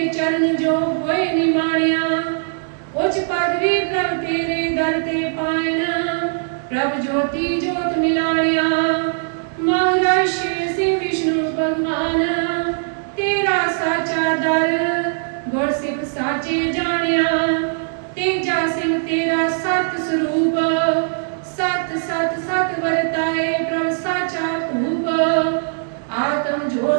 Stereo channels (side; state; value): left; silent; digital silence